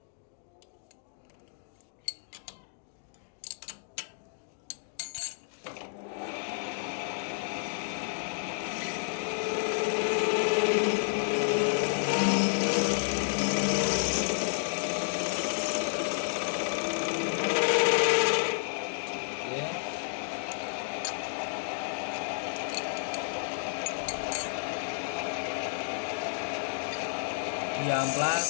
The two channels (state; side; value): silent; right; digital silence